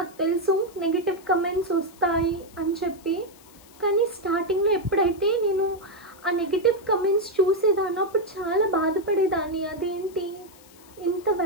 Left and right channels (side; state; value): left; noise; hiss, 24 dB below the sound